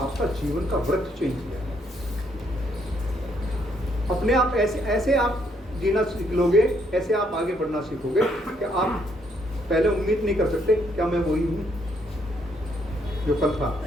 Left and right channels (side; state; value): both; normal; correlation 0.71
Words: जीवन का वृत्त चेंज हो जाएगा। अपने आप ऐसे आप जीना सीख लोगे, ऐसे आप आगे बढ़ना सीखोगे कि आप पहले उम्मीद नहीं कर सकते क्या मैं वही हूँ जो कल था।